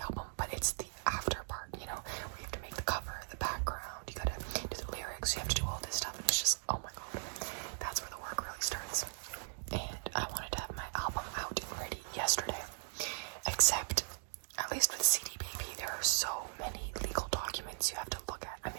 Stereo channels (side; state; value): left; silent; digital silence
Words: album, but it's the after part, you know, where you have to make the cover, the background, you gotta do the lyrics, you have to do all this stuff, and it's just, oh my god, that's where the work really starts. And I wanted to have my album out and ready yesterday, except, at least with CD Baby, there are so many legal documents you have to look at. I